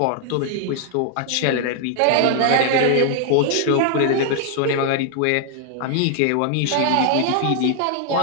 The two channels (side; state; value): both; different; correlation 0.00